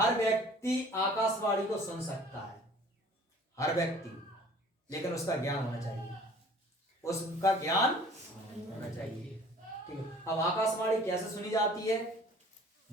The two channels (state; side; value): normal; both; correlation 0.50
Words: व्यक्ति आकाशवाणी को सुन सकता है, हर व्यक्ति, लेकिन उसका ज्ञान होना चाहिए। उसका ज्ञान होना चाहिए। ठीक है, अब आकाशवाणी कैसे सुनी जाती है,